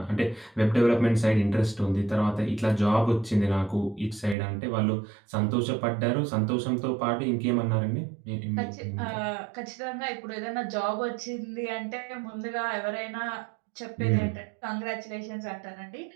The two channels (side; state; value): left; drops out; at 4.4 s